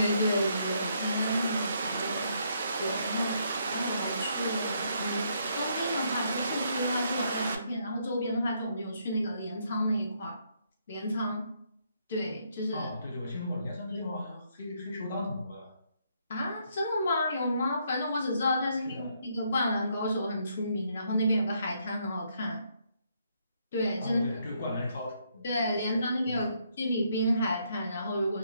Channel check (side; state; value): both; inverted; correlation -0.73